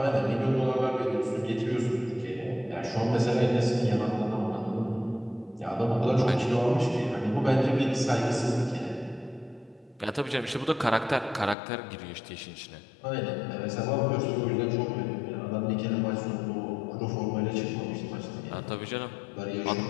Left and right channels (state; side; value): drops out; right; at 11.6 s